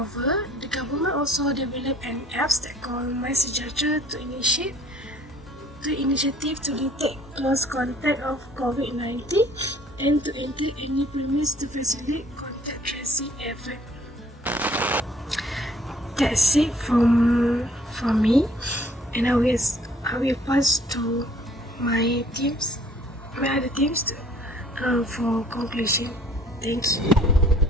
the government also developed an app that called My Sejahtera to initiative to detect close contact of COVID-19 and to enter any premise to facilitate contact tracing effort. That's it from me, and I will pass to my other teams for conclusion. Thank you.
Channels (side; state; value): both; normal; correlation 0.57